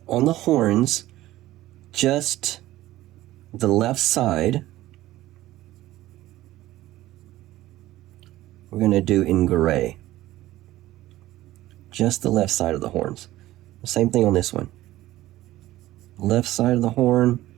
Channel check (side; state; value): left; quieter; 15.7 dB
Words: on the horns just the left side. We're going to do in gray. Just the left side of the horns. Same thing on this one. Left side of the horn.